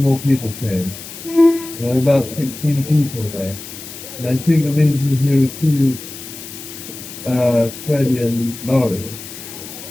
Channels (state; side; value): noise; left; hiss, 13 dB below the sound